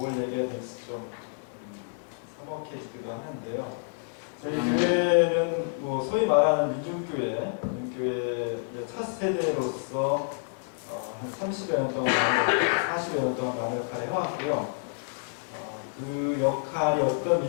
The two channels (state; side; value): silent; right; digital silence